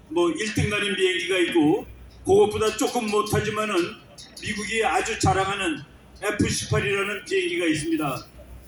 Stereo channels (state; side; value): identical; both; correlation 1.00